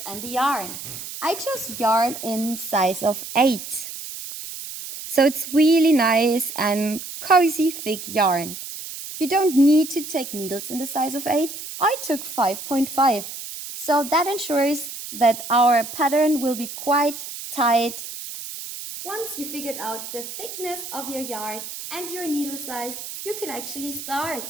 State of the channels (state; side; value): noise; right; hiss, 10 dB below the sound